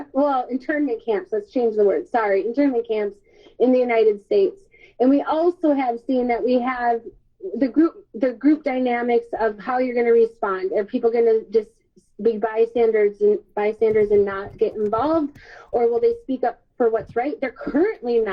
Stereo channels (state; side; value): identical; both; correlation 1.00